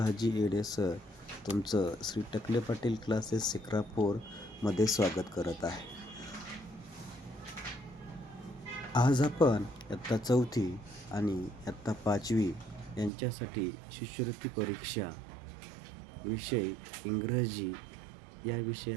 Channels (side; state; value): left; drops out; at 13.1 s